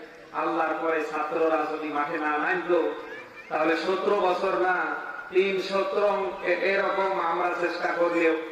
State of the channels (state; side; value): identical; both; correlation 1.00